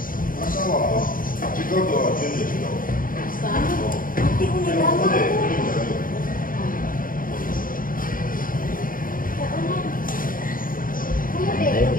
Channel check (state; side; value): late; right; 0.40 ms